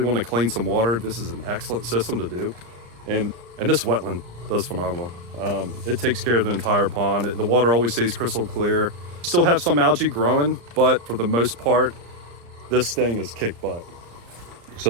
want to clean some water, this is an excellent system to do. And this wetland does phenomenal. It takes care of the entire pond. The water always stays crystal clear. Still have some algae growing, but for the most part, this thing is kick butt. So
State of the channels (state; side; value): late; left; 34 ms